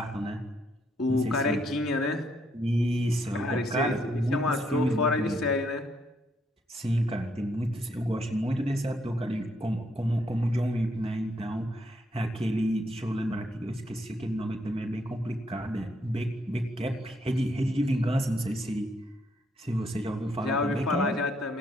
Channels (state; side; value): normal; both; correlation 0.73